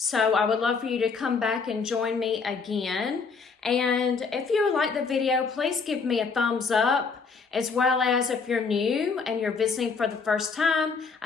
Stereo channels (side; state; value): right; quieter; 5.0 dB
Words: I would love for you to come back and join me again. And if you like the video, please give me a thumbs up. As well as if you're new and you're visiting for the first time,